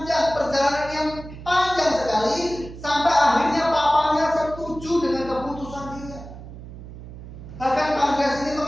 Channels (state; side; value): noise; right; hum, 14 dB below the sound